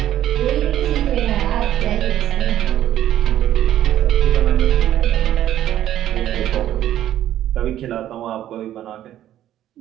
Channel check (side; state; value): left; quieter; 12.3 dB